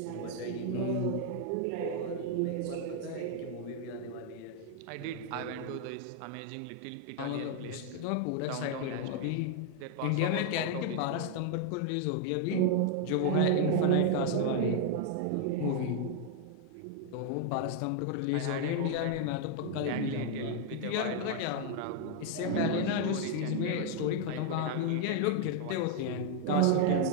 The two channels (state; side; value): different; both; correlation 0.00